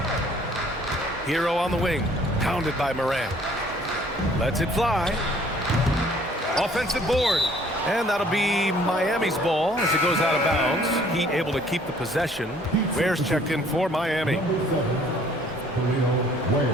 Hero on the wing. Pounded by Morant. Lets it fly. Offensive board. And that'll be Miami's ball as it goes out of bounds. Heat able to keep the possession. Ware's checked in for Miami.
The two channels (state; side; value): normal; both; correlation 0.58